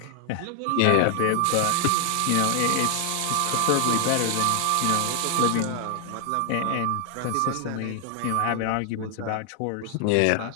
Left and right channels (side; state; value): both; different; correlation 0.00